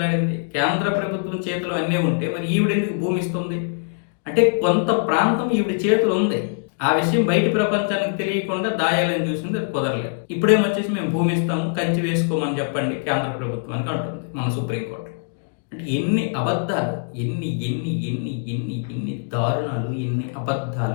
కేంద్ర ప్రభుత్వం చేతిలో అన్నీ ఉంటే మరి ఈవిడెందుకు భూమి ఇస్తుంది? అంటే కొంత ప్రాంతం ఈవిడ చేతులు ఉంది, ఆ విషయం బయట ప్రపంచానికి తెలియకుండా దాయాలని చూసింది, అది కుదరలేదు. ఇప్పుడేమొచ్చేసి మేము భూమి ఇస్తాము, కంచి వేసుకోమని చెప్పండి కేంద్ర ప్రభుత్వానికి అంటుంది మన సుప్రీంకోర్టు. అంటే ఎన్ని అబద్ధాలు, ఎన్ని దారుణాలు, ఎన్ని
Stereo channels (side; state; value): right; silent; digital silence